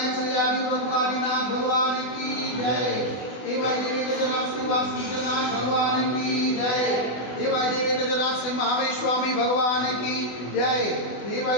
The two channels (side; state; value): right; late; 24 ms